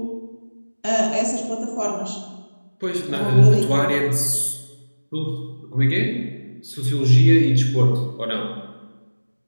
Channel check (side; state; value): both; inverted; correlation -1.00